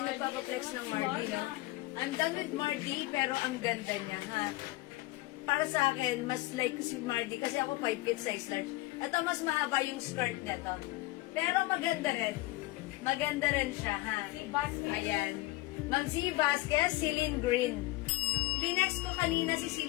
yung nagpapaflex ng Mardy, no? I'm done with Mardy, pero ang ganda niya, ha? Para sa akin, mas like si Mardy, kasi ako 5 feet size large. Ito, mas mahaba yung skirt nito. Pero maganda rin. Maganda rin siya, ha? Ayan. Ma'am C. Vasquez, Celine Green. Linex ko kanina si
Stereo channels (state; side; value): quieter; right; 19.5 dB